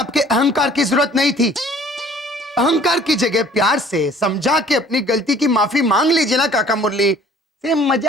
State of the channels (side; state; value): both; normal; correlation 0.53